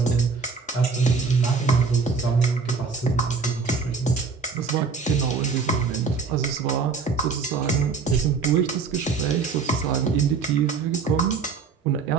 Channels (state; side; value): quieter; left; 5.0 dB